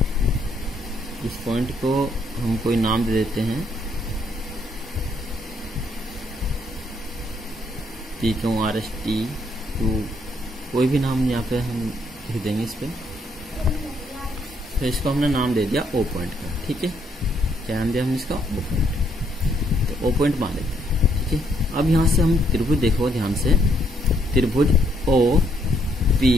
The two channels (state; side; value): normal; both; correlation 0.71